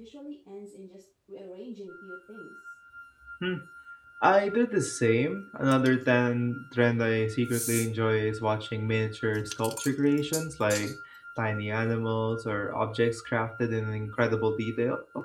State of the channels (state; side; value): identical; both; correlation 1.00